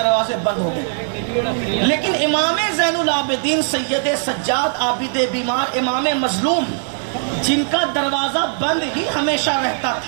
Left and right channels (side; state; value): left; silent; 58 dB below the other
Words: بند ہو گئے۔ لیکن امام زین العابدین سید سجاد عابد بیمار امام مظلوم، جن کا دروازہ بند ہی ہمیشہ رہتا